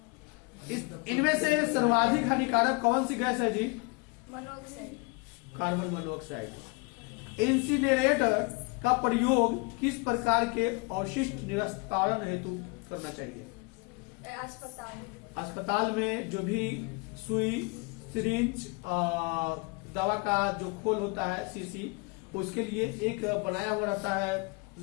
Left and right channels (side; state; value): right; quieter; 29.9 dB